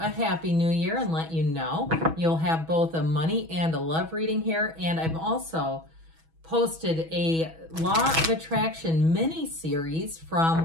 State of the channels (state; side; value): late; left; 6.2 ms